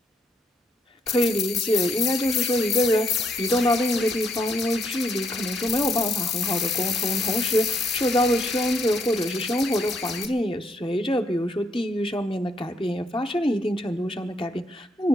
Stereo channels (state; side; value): normal; both; correlation 0.73